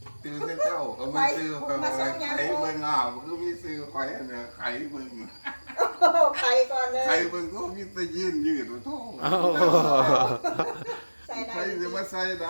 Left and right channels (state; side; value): inverted; both; correlation -1.00